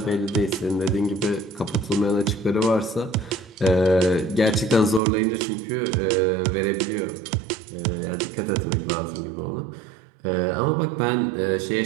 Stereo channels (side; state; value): left; drops out; at 5.0 s